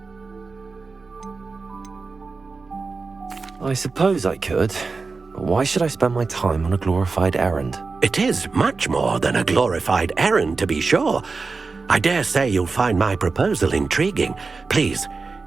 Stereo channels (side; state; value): left; quieter; 4.3 dB